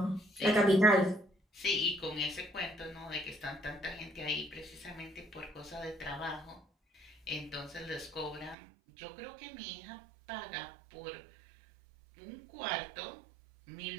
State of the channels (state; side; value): drops out; left; at 8.6 s